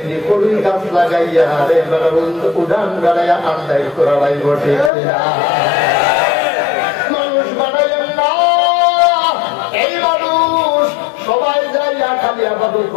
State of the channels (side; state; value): right; drops out; at 4.9 s